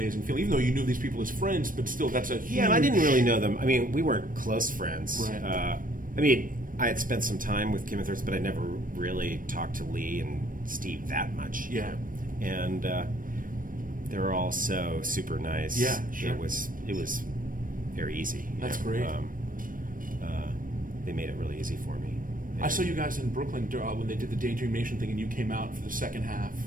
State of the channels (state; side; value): late; left; 0.40 ms